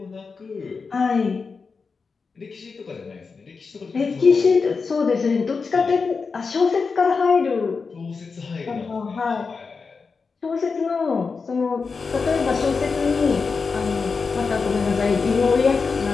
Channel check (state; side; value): quieter; right; 4.9 dB